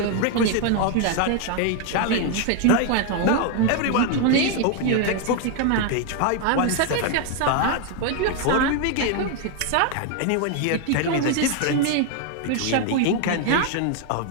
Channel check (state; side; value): different; both; correlation 0.01